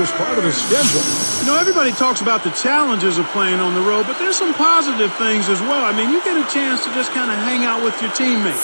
part of the schedule. You know, everybody talks about the challenges of playing on the road, but there's some positive things as well. I mean, you get a chance to just kind of hang out with your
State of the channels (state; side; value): inverted; both; correlation -1.00